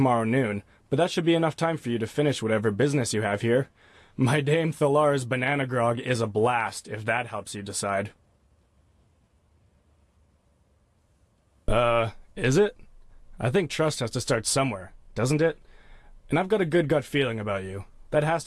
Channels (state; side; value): identical; both; correlation 1.00